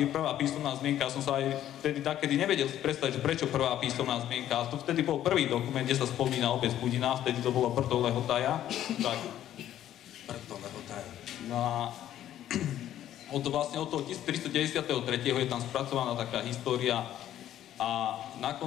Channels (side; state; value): right; quieter; 11.9 dB